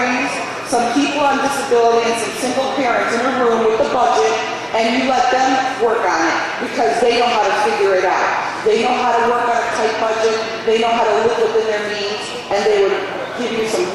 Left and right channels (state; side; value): identical; both; correlation 1.00